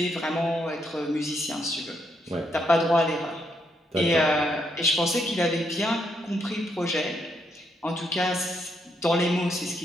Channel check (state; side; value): normal; both; correlation 0.77